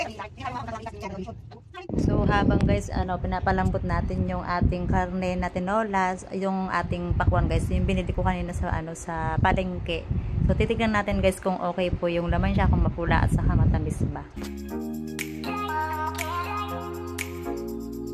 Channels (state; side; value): identical; both; correlation 1.00